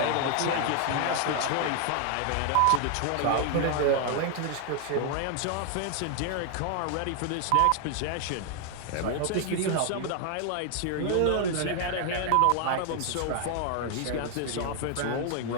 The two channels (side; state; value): both; different; correlation 0.00